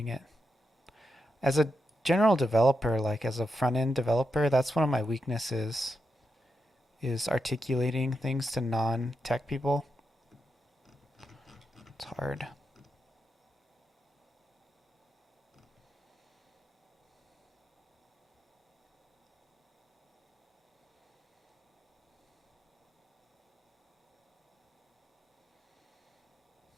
it. As a general developer, like as a front-end developer, that's one of my weaknesses, is articulating things to non-tech people. It's hard.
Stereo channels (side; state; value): both; normal; correlation 0.85